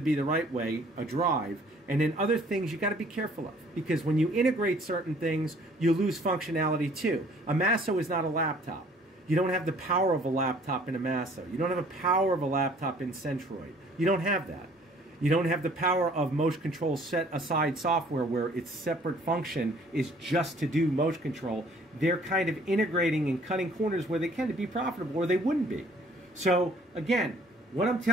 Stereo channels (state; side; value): normal; both; correlation 0.57